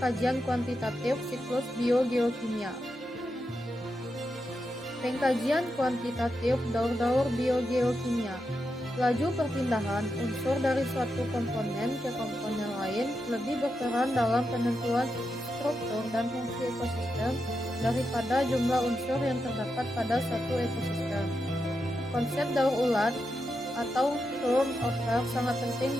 kajian kuantitatif siklus biogeokimia. Pengkajian kuantitatif daur-daur biogeokimia. Laju perpindahan unsur dari suatu komponen ke komponen lain lebih berperan dalam penentuan struktur dan fungsi ekosistem daripada jumlah unsur yang terdapat pada suatu ekosistem. Konsep daur ulang atau turnover sangat penting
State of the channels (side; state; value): both; normal; correlation 0.86